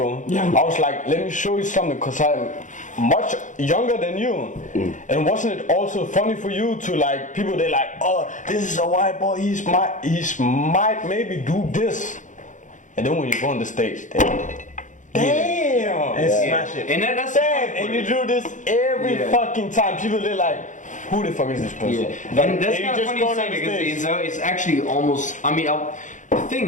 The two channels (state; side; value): late; right; 0.36 ms